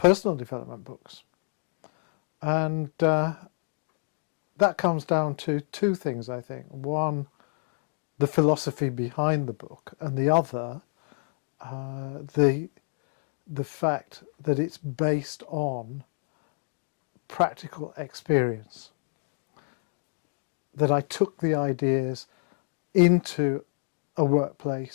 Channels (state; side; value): silent; right; digital silence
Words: development books. And that comes down to two things, I think. One, the philosophy behind the book, and the other, the fact that it's based on practical experience. That I took the ideas into a